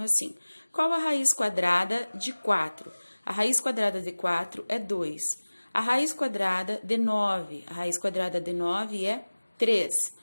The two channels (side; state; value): both; inverted; correlation -1.00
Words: assim: qual a raiz quadrada de 4? A raiz quadrada de 4 é 2. A raiz quadrada de 9, a raiz quadrada de 9 é 3.